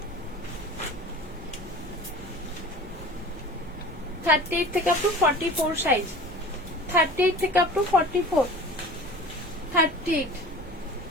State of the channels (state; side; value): normal; both; correlation 0.39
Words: থেকে আপ টু 44 সাইজ, 38 থেকে আপ টু 44, 38,